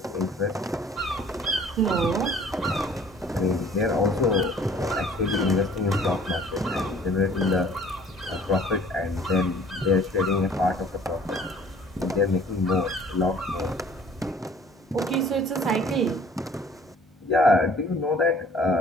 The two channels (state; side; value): normal; both; correlation 0.53